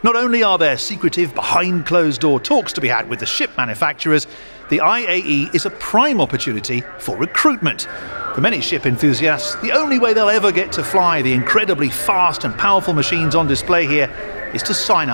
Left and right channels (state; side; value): inverted; both; correlation -1.00